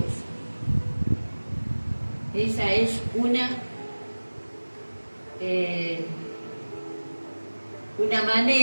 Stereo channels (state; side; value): inverted; both; correlation -1.00